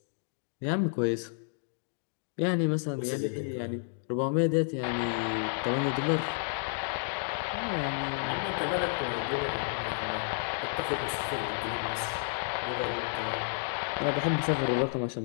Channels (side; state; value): right; silent; digital silence